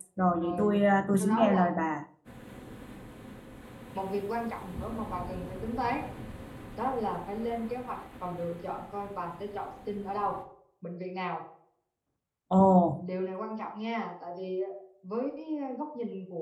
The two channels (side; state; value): both; identical; correlation 1.00